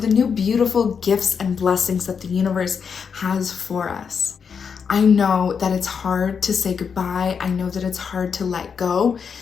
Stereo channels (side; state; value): right; quieter; 6.4 dB